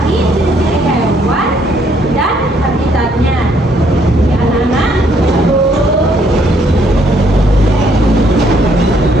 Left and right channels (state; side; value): normal; both; correlation 0.68